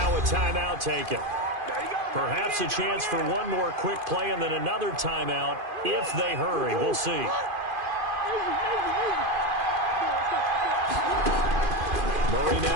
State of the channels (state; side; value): late; left; 2.5 ms